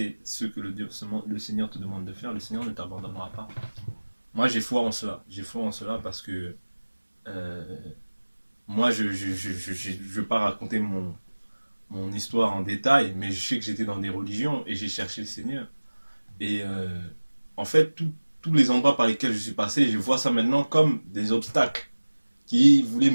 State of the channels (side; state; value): both; inverted; correlation -1.00